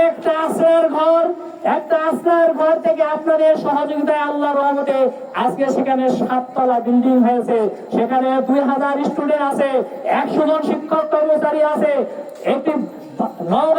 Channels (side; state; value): both; identical; correlation 1.00